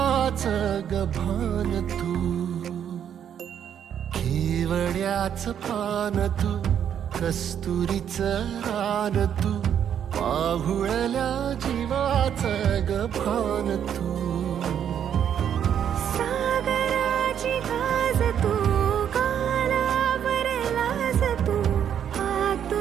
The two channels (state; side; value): quieter; left; 9.1 dB